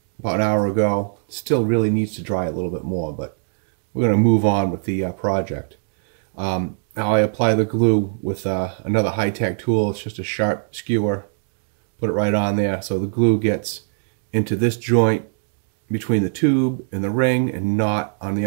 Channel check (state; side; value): silent; left; digital silence